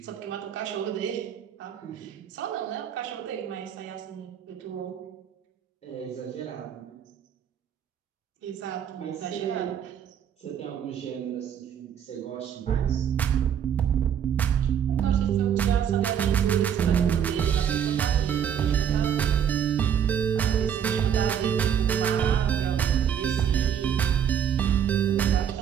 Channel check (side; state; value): left; quieter; 8.7 dB